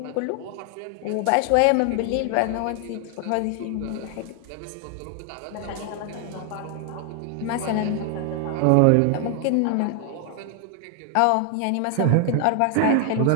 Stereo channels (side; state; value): both; different; correlation 0.00